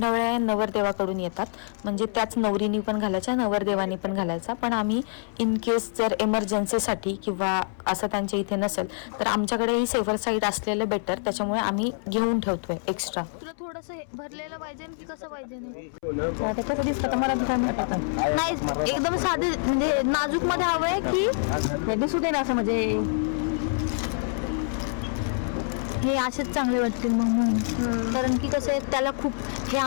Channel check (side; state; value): right; silent; 61 dB below the other